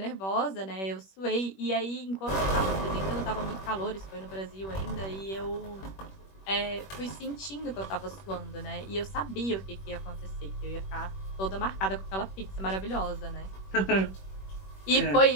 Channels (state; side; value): late; right; 21 ms